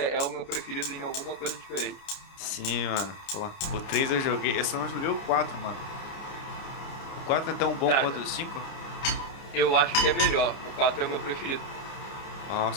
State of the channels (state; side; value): late; right; 29 ms